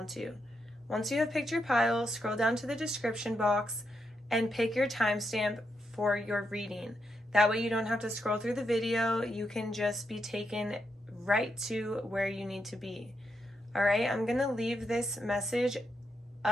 to. Once you have picked your pile, scroll down to the description box and pick your timestamp for your reading. That way you don't have to scroll through the video. You can just be taken right to where you need to be. All right, I'm going to leave this message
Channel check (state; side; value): normal; both; correlation 0.82